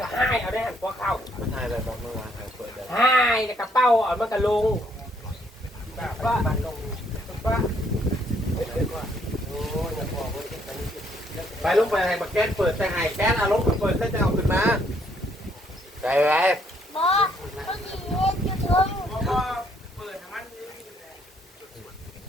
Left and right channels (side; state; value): both; normal; correlation 0.68